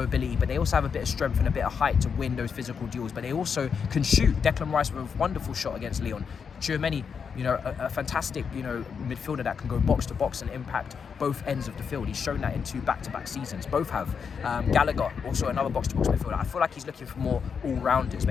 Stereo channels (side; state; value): right; quieter; 6.4 dB